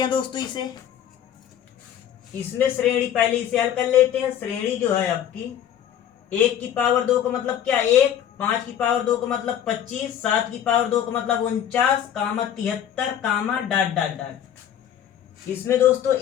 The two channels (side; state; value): right; quieter; 9.9 dB